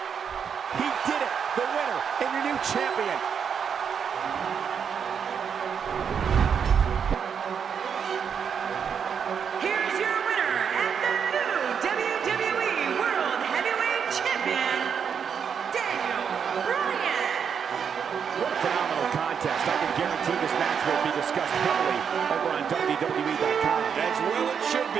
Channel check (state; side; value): quieter; left; 7.1 dB